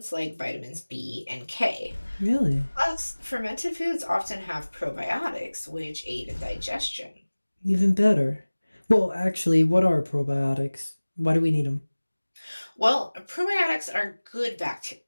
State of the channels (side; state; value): both; inverted; correlation -1.00